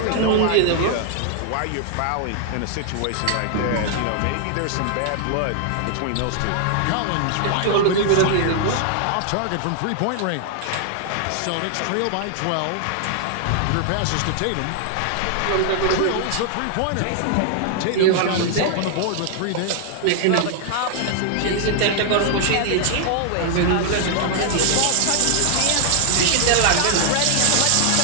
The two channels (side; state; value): both; different; correlation 0.00